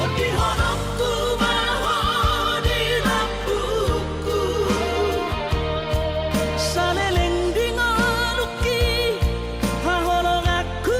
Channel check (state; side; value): identical; both; correlation 1.00